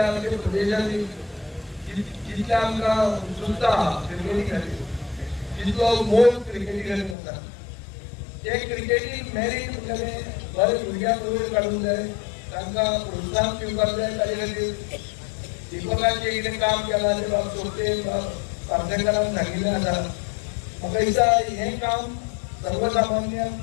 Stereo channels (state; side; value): drops out; right; at 7.2 s